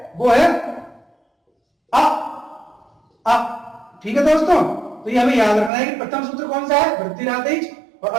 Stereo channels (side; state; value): left; drops out; at 5.7 s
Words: वो है अ। ठीक है दोस्तों, तो ये हमें याद रखना है कि प्रथम सूत्र कौन सा है? वृद्धि राधैच, और